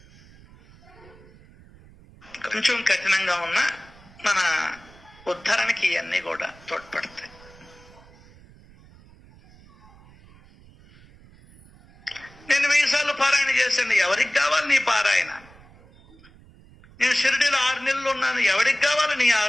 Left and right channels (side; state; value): right; noise; rumble, 24 dB below the sound